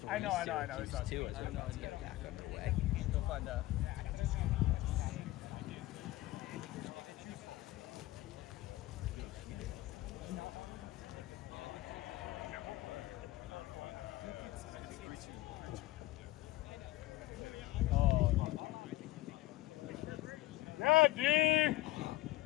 I know. Syracuse too, as we're about to get back underway. Go find out. Yeah, D! Here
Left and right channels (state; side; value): quieter; right; 17.5 dB